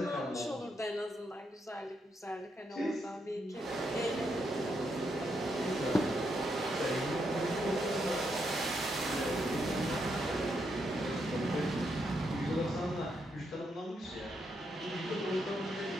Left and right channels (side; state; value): both; normal; correlation 0.80